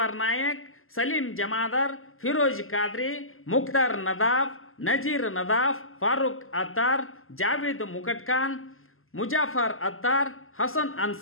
ನಾಯಕ್, ಸಲೀಂ ಜಮಾದಾರ್, ಫಿರೋಜ್ ಖಾದ್ರಿ, ಮುಖ್ತಾರ್ ನದಾಫ್, ನಜೀರ್ ನದಾಫ್, ಫಾರೂಕ್ ಅತ್ತಾರ್, ಜಾವೇದ್ ಮುಕಟ್ಖಾನ್, ಮುಜಾಫರ್ ಅತ್ತಾರ್, ಹಸನ್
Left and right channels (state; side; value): late; right; 0.61 ms